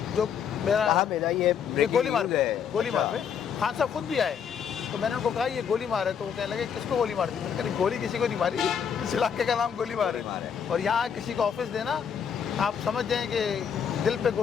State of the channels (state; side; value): quieter; right; 7.5 dB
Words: जो मेरा ये गोली मार पे खान साहब खुद भी आए। तो मैंने उनको कहा ये गोली मार है, तो वो कहने लगे किसको गोली मार दी? मैंने कहा गोली किसी को नहीं मारी, इस इलाके का नाम गोली मार है। और यहाँ किसी को ऑफिस देना, आप समझ जाएँ कि दिल